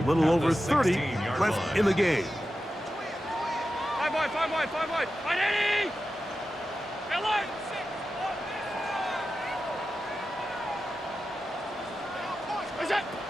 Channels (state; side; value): normal; both; correlation 0.92